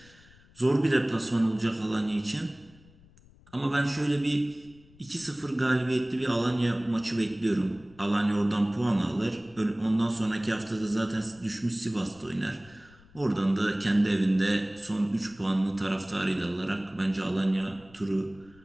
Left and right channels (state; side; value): noise; left; rumble, 26 dB below the sound